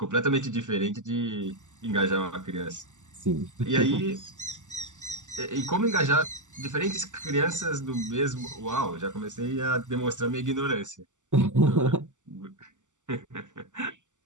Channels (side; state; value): left; late; 0.86 ms